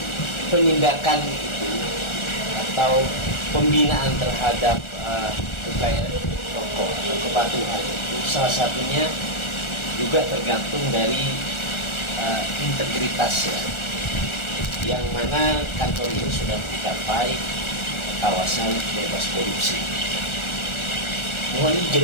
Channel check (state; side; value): late; right; 1.4 ms